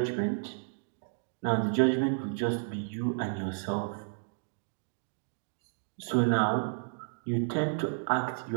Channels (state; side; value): silent; left; digital silence